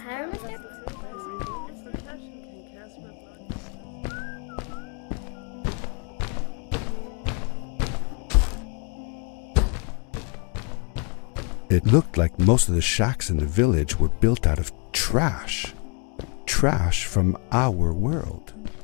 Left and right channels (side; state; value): right; quieter; 37.2 dB